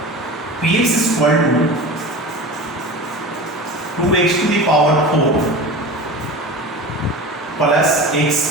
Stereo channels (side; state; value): both; normal; correlation 0.33